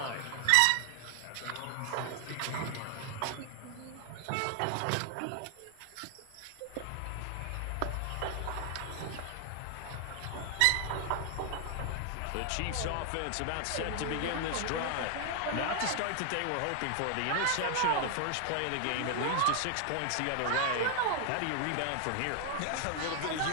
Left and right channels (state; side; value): different; both; correlation 0.00